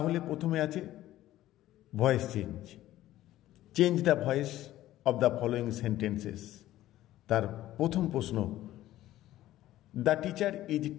প্রথমে আছে voice change. Change the voice of the following sentences. তার প্রথম প্রশ্ন, the teacher is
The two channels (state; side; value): quieter; right; 14.5 dB